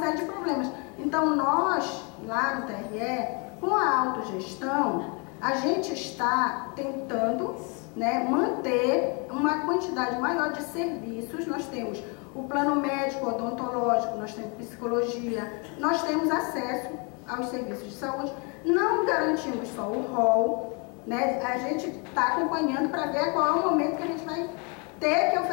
de problemas. Então nós, lá no TRE, com a autogestão, a gente está tentando, né, manter uma quantidade maior de serviços. Nós temos o plano médico, odontológico, nós temos psicologia, nós temos acesso aos serviços de saúde. Não garantimos só o rol, né? A gente está acompanhando para ver qual é o momento que a gente vai ter que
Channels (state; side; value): quieter; right; 33.3 dB